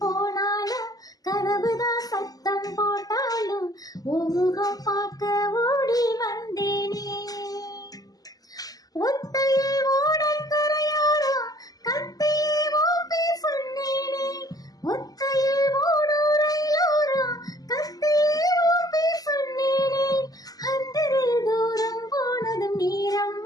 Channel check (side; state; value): right; late; 0.18 ms